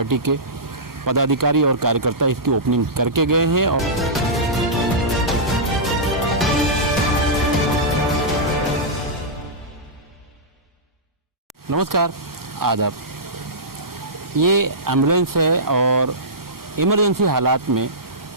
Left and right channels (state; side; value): normal; both; correlation -0.15